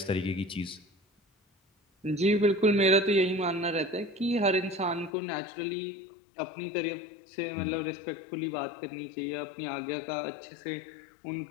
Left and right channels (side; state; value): right; drops out; at 5.1 s